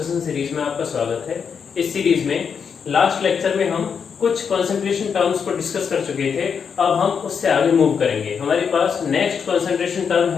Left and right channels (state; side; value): quieter; right; 6.6 dB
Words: series में आपका स्वागत है। इस सीरीज में लास्ट लेक्चर में हम कुछ कंसंट्रेशन टर्म्स को डिस्कस कर चुके थे। अब हम उससे आगे मूव करेंगे। हमारे पास नेक्स्ट कंसंट्रेशन टर्म